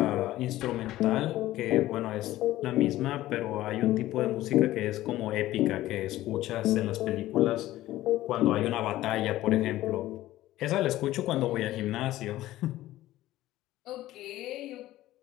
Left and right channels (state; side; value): quieter; right; 15.4 dB